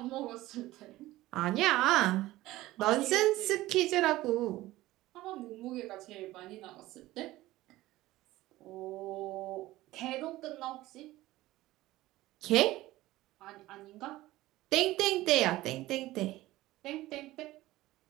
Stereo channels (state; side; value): quieter; left; 17.1 dB